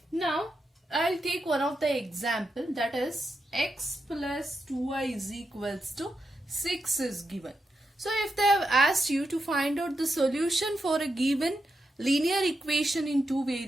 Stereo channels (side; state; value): both; normal; correlation 0.86